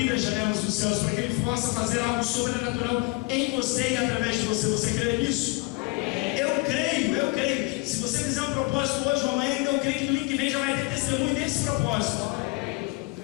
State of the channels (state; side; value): quieter; right; 25.2 dB